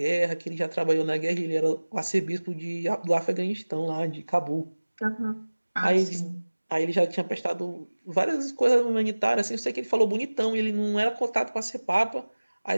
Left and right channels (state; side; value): inverted; both; correlation -1.00